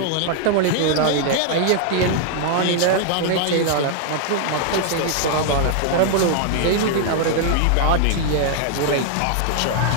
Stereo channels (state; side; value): different; both; correlation 0.00